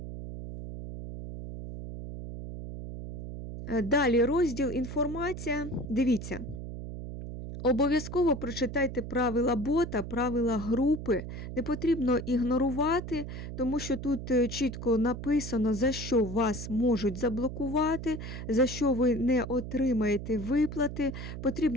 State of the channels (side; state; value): right; noise; hum, 8 dB below the sound